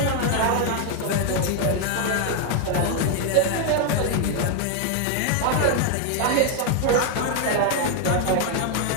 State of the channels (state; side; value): different; both; correlation 0.00